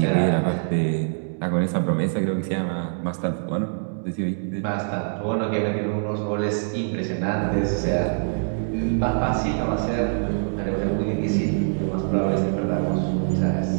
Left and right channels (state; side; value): silent; left; digital silence